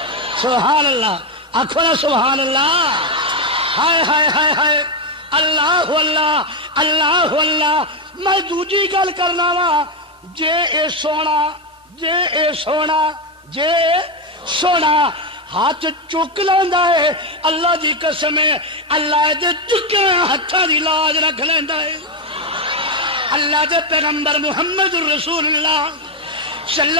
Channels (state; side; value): normal; both; correlation 0.07